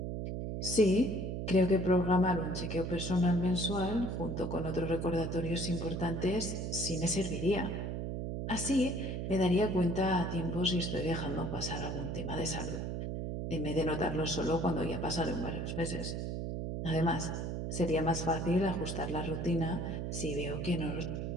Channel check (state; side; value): noise; right; hum, 3 dB below the sound